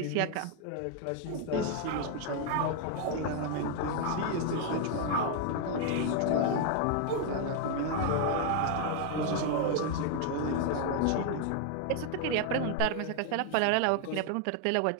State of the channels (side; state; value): both; different; correlation 0.00